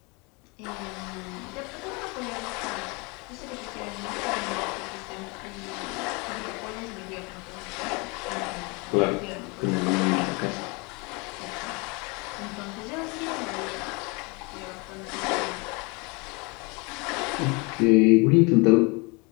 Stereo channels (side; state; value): right; quieter; 29.3 dB